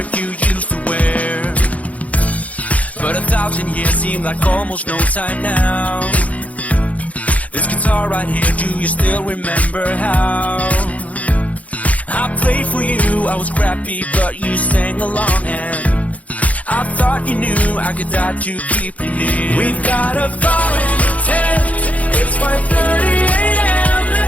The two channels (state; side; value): late; right; 0.069 ms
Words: you used to wear? But 1,000 years seem like almost no time now. This guitar right here, do you still remember how? I played for you, I was crappy, but you sang along, and I thought you knew I could die to keep you near. We've got a fire in the tent, it's 5:30 a.m.